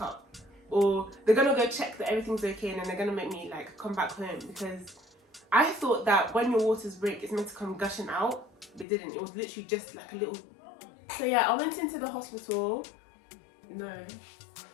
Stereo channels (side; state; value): right; drops out; at 8.8 s